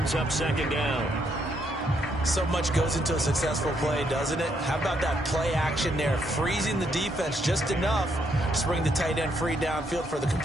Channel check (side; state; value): both; normal; correlation 0.74